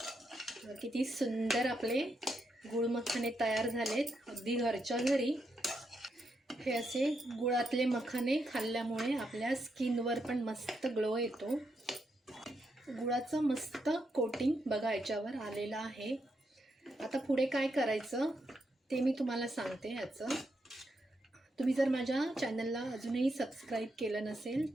किती सुंदर आपले गुळ मखाने तयार झालेत अगदी घरच्या घरी. हे असे गुळातले मखाने खाल्ल्यामुळे आपल्या स्किनवर पण मस्त ग्लो येतो. गुळाचं मस्त कोटिंग बघा याच्यावर आलेलं आहे. आता पुढे काय करायचं ते मी तुम्हाला सांगते. ह्याचं तुम्ही जर माझ्या चॅनलला अजूनही सबस्क्राईब केलं नसेल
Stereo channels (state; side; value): normal; both; correlation 0.81